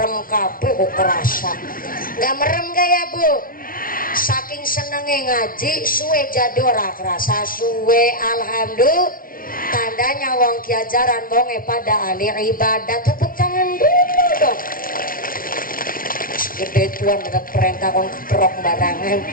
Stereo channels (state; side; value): late; right; 0.42 ms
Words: kabeh kok kerasa? Nggak merem gak ya Bu? Saking senengnya ngaji suwe jadi ora kerasa suwe. Alhamdulillah, tandanya wong kiajaran bonge pada ahli ibadah. Tepuk tangan dulu dong. Gede tuan ada perintah kon keprok barangan.